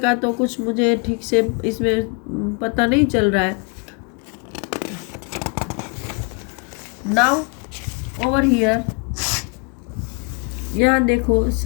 तो कुछ मुझे ठीक से इसमें पता नहीं चल रहा है। नाउ ओवर हियर, यहाँ देखो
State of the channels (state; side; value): quieter; right; 33.1 dB